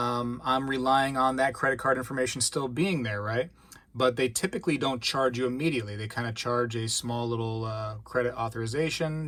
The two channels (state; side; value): identical; both; correlation 1.00